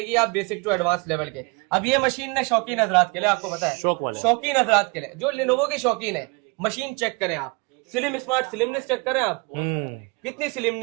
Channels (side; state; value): left; quieter; 29.5 dB